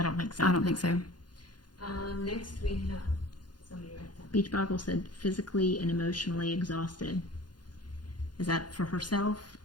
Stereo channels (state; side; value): late; right; 0.70 ms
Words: don't think so. I don't think so. Next we have somebody right there. BeachBoggle said physically and emotionally exhausted. Is that for herself?